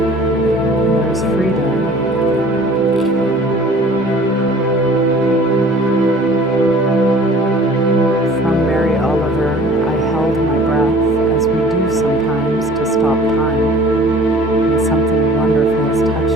There's freedom. From Mary Oliver, I held my breath as we do sometimes to stop time, and something wonderful has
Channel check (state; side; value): normal; both; correlation 0.49